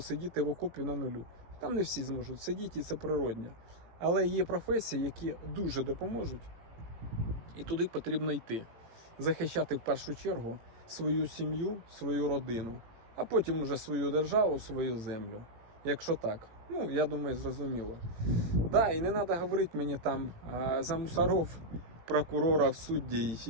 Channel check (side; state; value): left; late; 18 ms